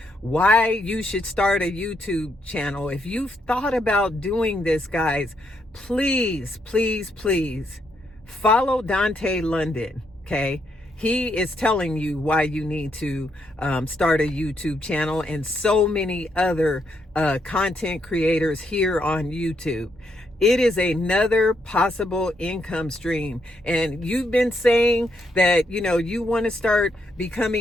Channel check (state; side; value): normal; both; correlation 0.77